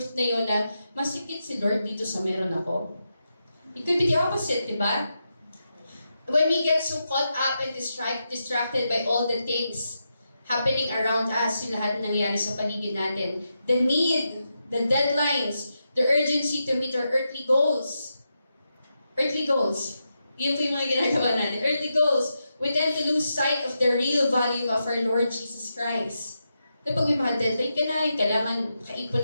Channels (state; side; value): inverted; both; correlation -0.86